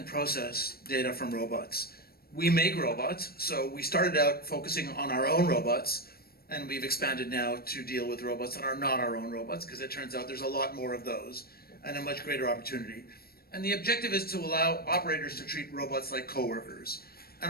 process data from robots. We make robots, so we started out focusing on our own robots, and we've expanded now to deal with robots that are not our own robots, because it turns out there's a lot more of those and a much greater opportunity. And the objective is to allow operators to treat robots like coworkers. And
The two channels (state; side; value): late; right; 0.44 ms